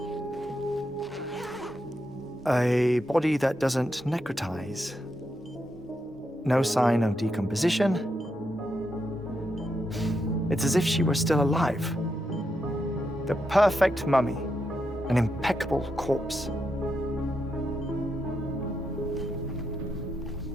A body that doesn't necrotize. No sign of decomposition. It's as if she were still alive. The perfect mummy. An impeccable corpse.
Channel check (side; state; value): both; normal; correlation 0.83